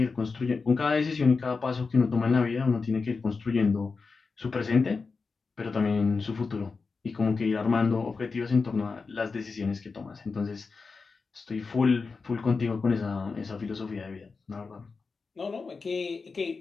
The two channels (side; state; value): right; quieter; 4.5 dB